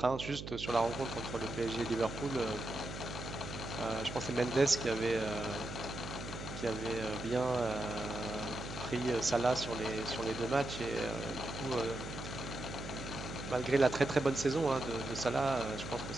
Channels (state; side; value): noise; right; hum, 9 dB below the sound